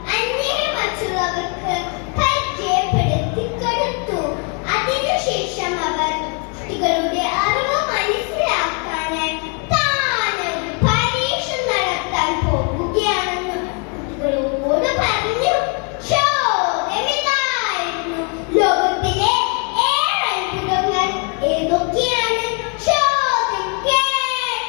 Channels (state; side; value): quieter; right; 37.4 dB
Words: അന്യരെ മറ്റുള്ളവർക്ക് പരിചയപ്പെടുത്തി കൊടുത്തു. അതിനുശേഷം അവർ കുട്ടികളുടെ അറിവ് മനസ്സിലാക്കാനായി താനൊരു പരീക്ഷ നടത്താൻ പോകുകയാണെന്ന് കുട്ടികളോട് പറഞ്ഞു. ചോദ്യമിതായിരുന്നു: ലോകത്തിലെ 7 അത്ഭുതങ്ങൾ ഏതൊക്കെയാണ്? ചോദ്യം